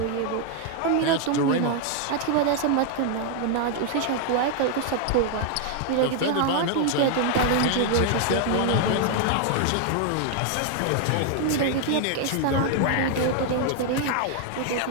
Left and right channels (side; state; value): both; different; correlation 0.00